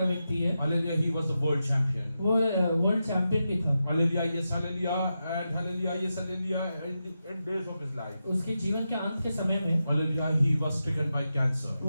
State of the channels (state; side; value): inverted; both; correlation -0.89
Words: व्यक्ति है। Hallelujah, he was the world champion. वो वर्ल्ड चैंपियन भी था। Hallelujah, yes, hallelujah, and hallelujah, yes, hallelujah, in days of his life. उसके जीवन के अंत के समय में Hallelujah, he was stricken by cancer.